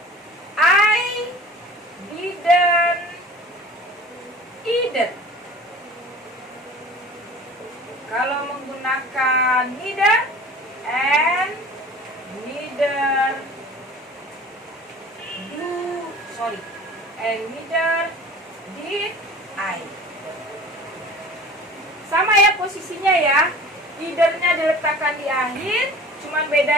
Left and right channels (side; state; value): both; normal; correlation 0.42